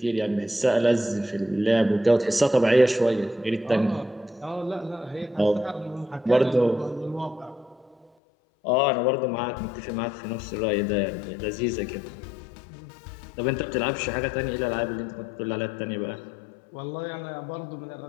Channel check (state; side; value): drops out; right; at 8.1 s